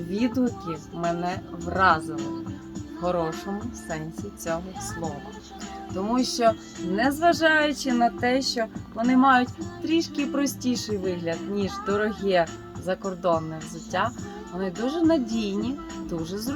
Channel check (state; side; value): identical; both; correlation 1.00